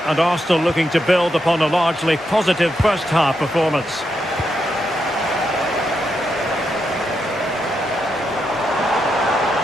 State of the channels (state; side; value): normal; both; correlation 0.83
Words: and Arsenal looking to build upon a largely positive first half performance.